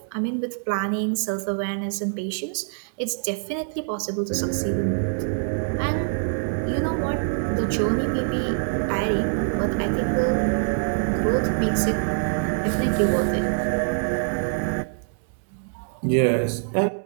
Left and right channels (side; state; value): left; silent; digital silence